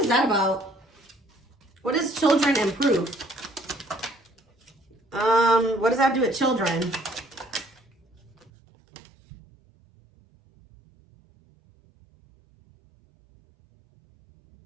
that about? What is children and proof? What does that have to do with children?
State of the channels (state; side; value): drops out; left; at 8.5 s